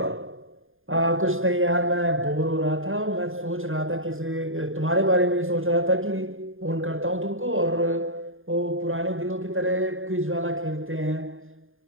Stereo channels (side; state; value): left; late; 0.59 ms